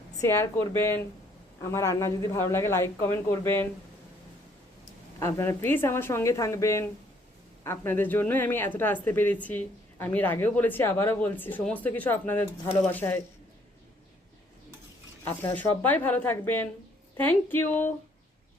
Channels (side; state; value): both; normal; correlation 0.65